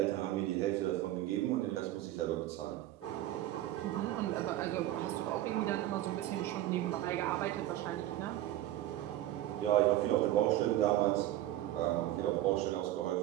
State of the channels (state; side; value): quieter; left; 14.2 dB